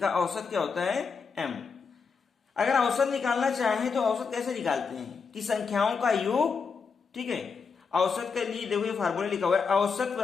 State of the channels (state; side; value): quieter; right; 5.4 dB